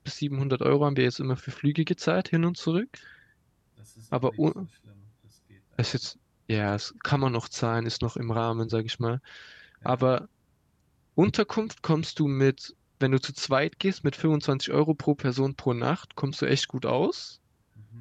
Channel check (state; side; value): identical; both; correlation 1.00